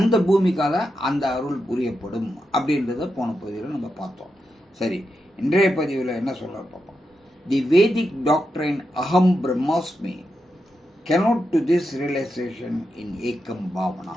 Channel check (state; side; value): normal; both; correlation 0.86